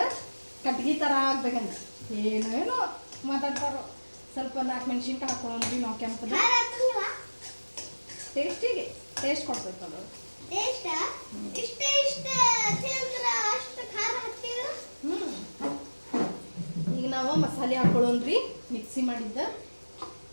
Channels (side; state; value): both; inverted; correlation -1.00